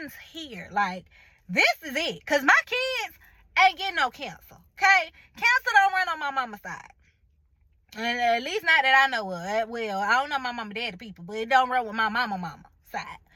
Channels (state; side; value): identical; both; correlation 1.00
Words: here. Like, this is it. Cause my kids ain't getting no cancer. Okay, cancer don't run on my mama's side. And at least not that I know of. Well, I don't know my mama daddy people, but it don't run with my mama side.